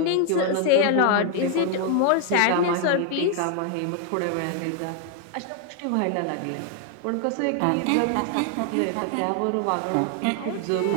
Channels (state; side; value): different; both; correlation 0.00